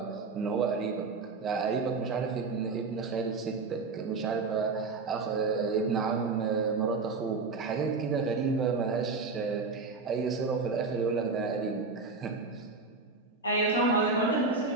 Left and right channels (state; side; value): quieter; left; 4.2 dB